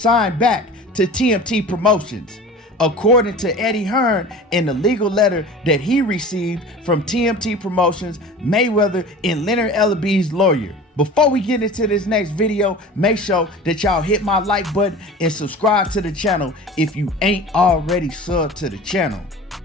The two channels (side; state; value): both; normal; correlation 0.38